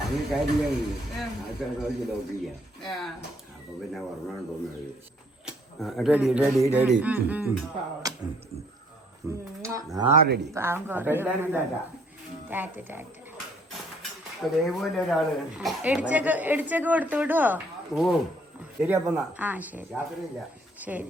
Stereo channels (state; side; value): normal; both; correlation 0.63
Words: റെഡി റെഡി റെഡി ഇടിച്ചൊക്കെ കൊടുത്തു വിടുവോ? ഓ ശരി. അപ്പൊ ആ ശരി. യാത്രയില്ല.